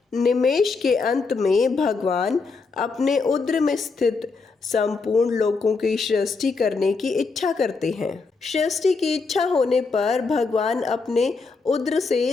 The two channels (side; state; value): right; quieter; 4.4 dB